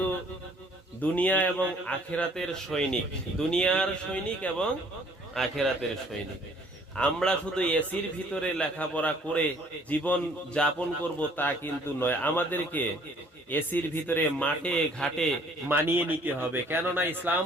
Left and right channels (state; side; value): normal; both; correlation 0.58